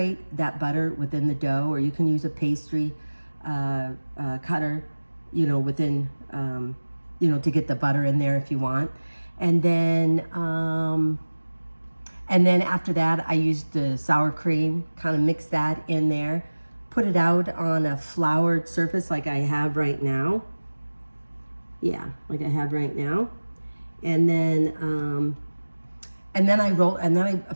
that butter within the dough, or you can use a pastry cutter, within, to get the butter in there if you want. And then after that, I used the sour cream, kind of mix that in there, put it out on a floured surface like I have right now. Yeah, like I have right now. And then I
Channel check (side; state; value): both; inverted; correlation -1.00